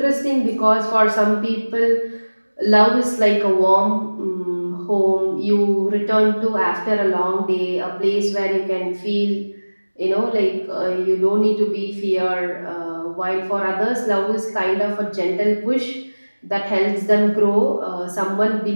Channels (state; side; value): inverted; both; correlation -1.00